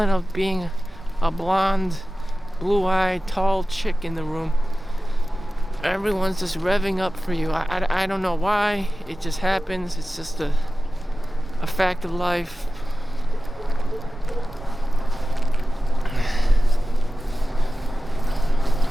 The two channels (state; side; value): normal; both; correlation 0.95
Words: of being a blonde, blue-eyed, tall chick in the room. Everyone's just revving up for you. I don't know why. It just happens. It's just a fact of life.